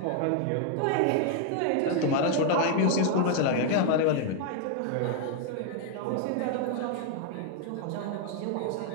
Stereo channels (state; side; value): different; both; correlation 0.00